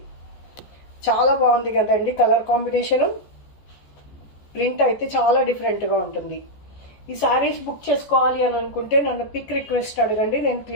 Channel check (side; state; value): right; late; 14 ms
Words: చాలా బాగుంది కదండి కలర్ కాంబినేషను. ప్రింట్ అయితే చాలా డిఫరెంట్గా ఉంటుంది. ఈ శారీస్ బుక్ చేసుకోవాలి అని అనుకుంటే నన్ను పిక్ రిక్వెస్ట్ అడగండి. నేను